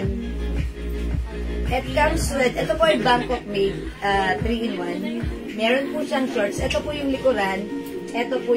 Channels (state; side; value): identical; both; correlation 1.00